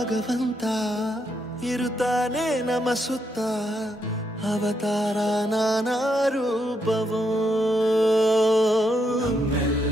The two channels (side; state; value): both; normal; correlation 0.79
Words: ಇರುತ್ತಾನೆ ನಮ ಸುತ್ತ ಅವತಾರ ನಾನಾ ರೂಪವೋ